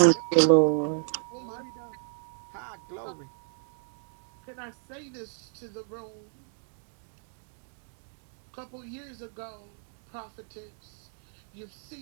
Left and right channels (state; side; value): silent; left; 57 dB below the other